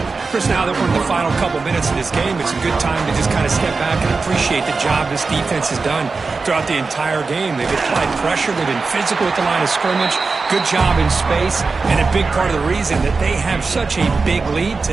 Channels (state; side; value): quieter; left; 4.3 dB